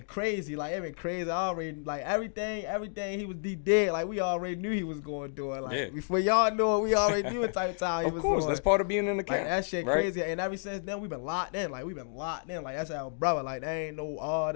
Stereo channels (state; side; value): silent; right; digital silence